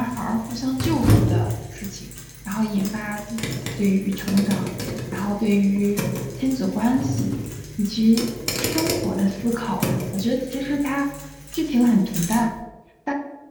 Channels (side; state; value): both; identical; correlation 1.00